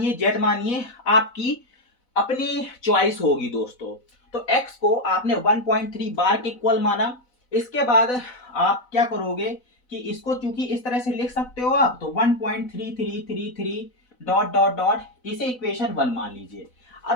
z मानिए, आपकी अपनी चॉइस होगी दोस्तों। तो x को आपने 1.3 बार के इक्वल माना। इसके बाद आप क्या करोगे कि इसको चूंकि इस तरह से लिख सकते हो आप, तो 1.3333 डॉट डॉट डॉट इसे इक्वेशन 1 मान लीजिए।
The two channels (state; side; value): late; right; 4.0 ms